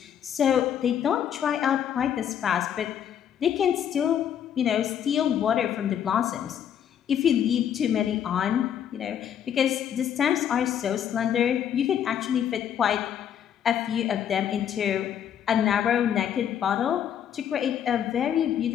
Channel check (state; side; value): quieter; right; 9.3 dB